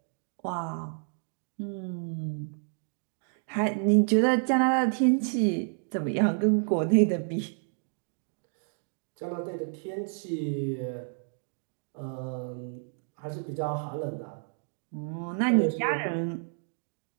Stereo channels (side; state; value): left; silent; 58 dB below the other